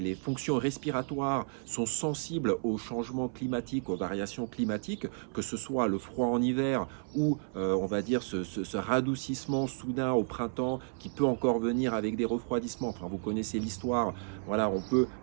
fonctions respiratoires sont sensibles aux changements climatiques, aux variations climatiques, que ce soit le froid en hiver ou on va dire ce radoucissement soudain au printemps qui peut encore venir avec des refroidissements. Enfin, vous connaissez l'histoire, voilà, on peut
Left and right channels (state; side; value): silent; left; 56 dB below the other